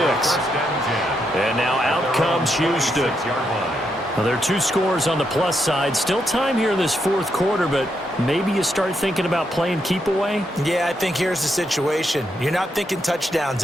And now out comes Houston. Well, there are 2 scores on the plus side. Still time here in this fourth quarter, but maybe you start thinking about playing keep away? Yeah, I think here's the situation. You're not thinking touchdowns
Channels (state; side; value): normal; both; correlation 0.81